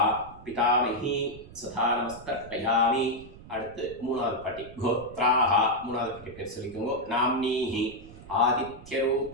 பிதாமஹி சதா நமஸ்தர்ப்பயாமி. அடுத்து மூணாவது பாட்டி கோத்ராஹ மூணாவது பாட்டி பேர் சொல்லிக்கோங்க. நாம்னீஹி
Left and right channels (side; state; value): right; noise; rumble, 18 dB below the sound